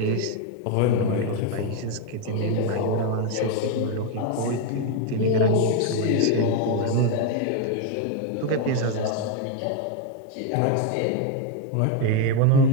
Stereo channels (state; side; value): different; both; correlation 0.01